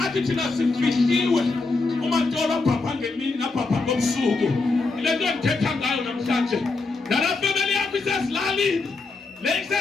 thina sifihliwe umatolo abhabha ngemini nabhabha ngobusuku. Ile nto ndithetha ngayo namhlanje nala family yakho isesilalini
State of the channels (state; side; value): quieter; right; 3.7 dB